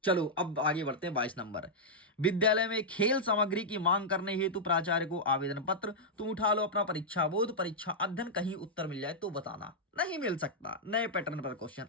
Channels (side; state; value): both; normal; correlation -0.07